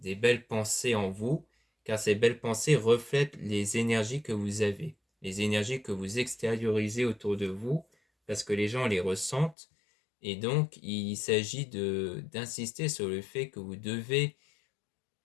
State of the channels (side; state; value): right; drops out; at 9.6 s